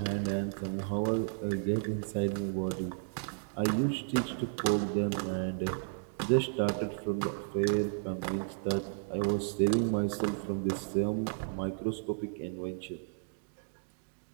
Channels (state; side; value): silent; left; digital silence